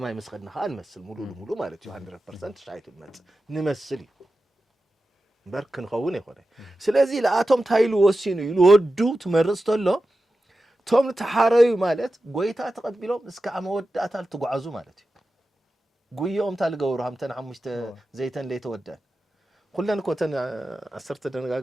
መስኸድና ከዓ እንመስል ሙሉ ማለት እዩ 100% ሻይቱ ንመስል እዩ برك نخون يخونه سلازي لآتهم تايلو وسينو يلودو تمرستولو توم تحاريو مالت قويتا تقبلهم اسكا عمود أتال تقعزو مالتي قويهم تالقورو همتن عمشت زيتن ليتو ودان كلن كوتن أسرت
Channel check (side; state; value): both; normal; correlation 0.93